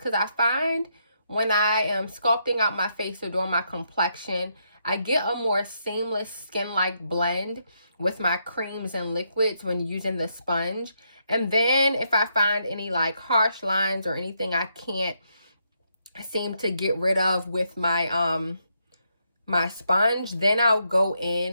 I find when I am sculpting out my face or doing my complexion, I get a more seamless skin-like blend with my creams and liquids when using the sponge. And then if I find any like harsh lines or anything I can't seem to get rid of with my my sponge, then I'll go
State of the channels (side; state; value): both; inverted; correlation -0.78